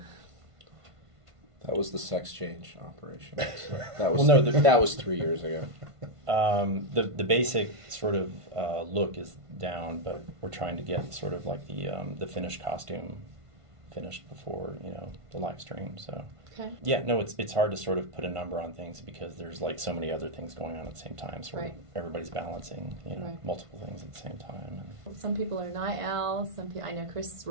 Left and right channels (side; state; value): left; late; 1.5 ms